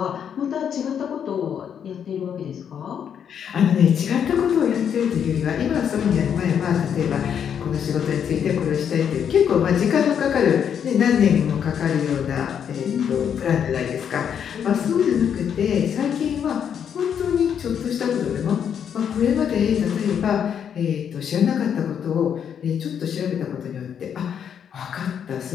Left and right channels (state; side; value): quieter; right; 8.2 dB